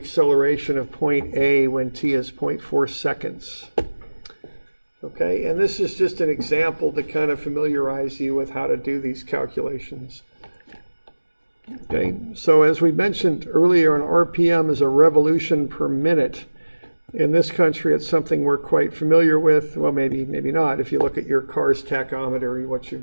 of point A when t is 0.4 seconds. Okay, and this is just an example to kind of familiarize you with how to do these calculations. Okay, so as we mentioned earlier, an RPM is a revolution per minute. In this country, it's something we're quite familiar with. Well, maybe not. If you look at your car's tachometer, what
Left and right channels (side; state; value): both; inverted; correlation -1.00